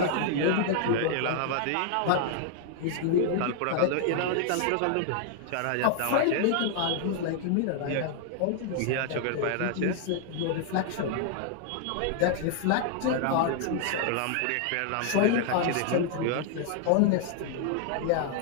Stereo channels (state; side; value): different; both; correlation 0.00